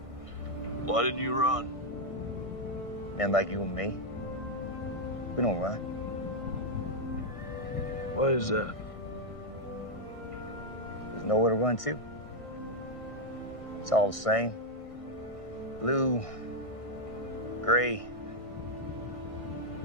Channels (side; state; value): right; late; 1.6 ms